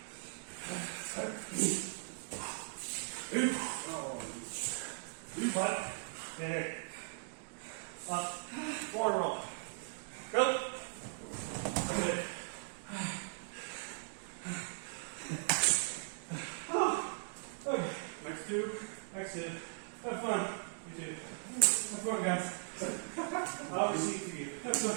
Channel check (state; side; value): silent; left; digital silence